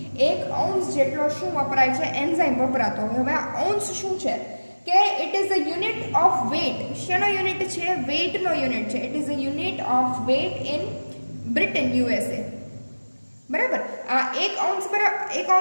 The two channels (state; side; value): inverted; both; correlation -1.00